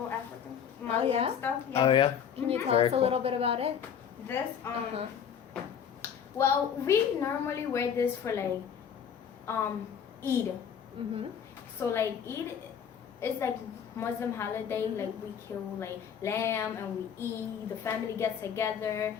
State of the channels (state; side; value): quieter; right; 7.9 dB